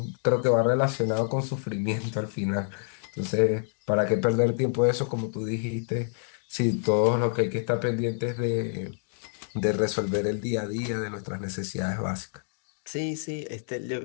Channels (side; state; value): right; silent; digital silence